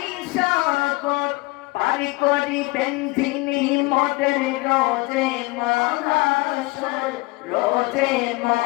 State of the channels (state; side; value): quieter; right; 23.4 dB